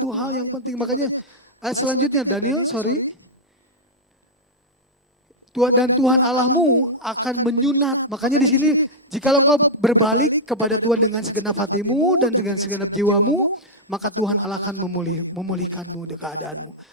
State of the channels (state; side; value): normal; both; correlation -0.06